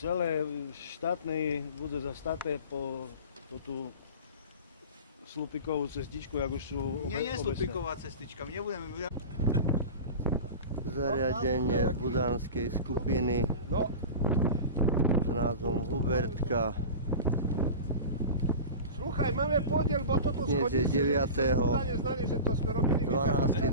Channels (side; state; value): both; inverted; correlation -0.31